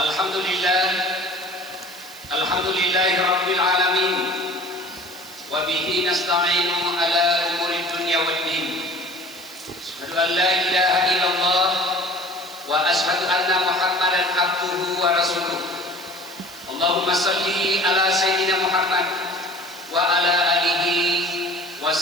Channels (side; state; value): right; noise; hiss, 18 dB below the sound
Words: Alhamdulillahi rabbil alamin wa bihi nasta'inu ala umuri dunya waddin. Asyhadu an la ilaha illallah wa asyhadu anna Muhammadan abduhu wa rasuluh. Allahumma salli ala Sayyidina Muhammad wa ala alihi wa